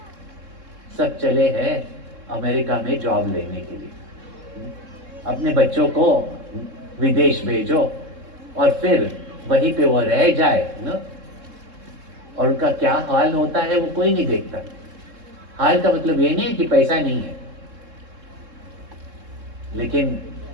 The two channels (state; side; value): late; left; 3.7 ms